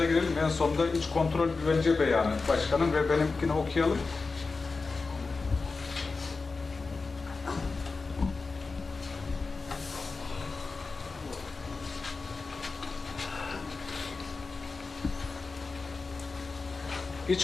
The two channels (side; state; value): right; quieter; 4.1 dB